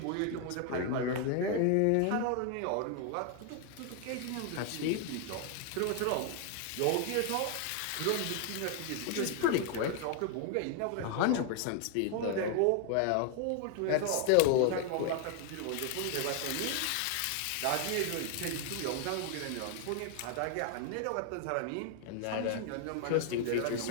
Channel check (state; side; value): different; both; correlation 0.00